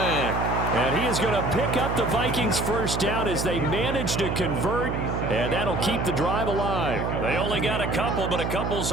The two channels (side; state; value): right; noise; hum, 2 dB below the sound